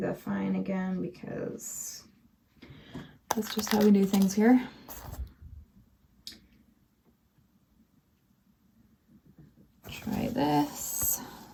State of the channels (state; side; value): identical; both; correlation 1.00